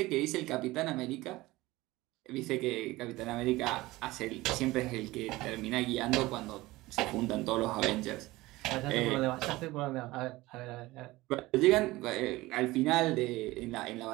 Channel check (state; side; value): quieter; left; 19.3 dB